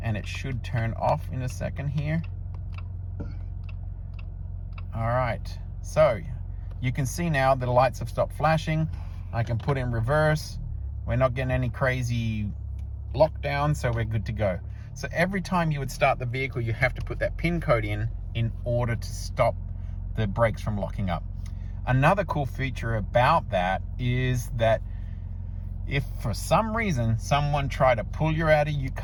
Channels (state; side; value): identical; both; correlation 1.00